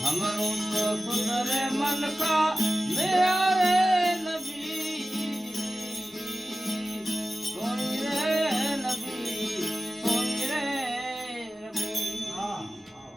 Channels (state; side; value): normal; both; correlation 0.95